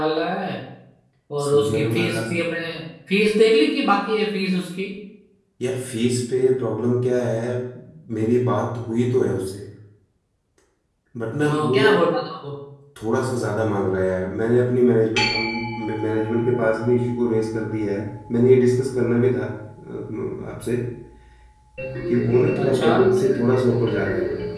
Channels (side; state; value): both; identical; correlation 1.00